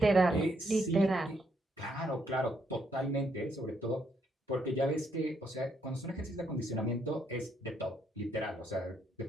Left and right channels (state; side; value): normal; both; correlation 0.74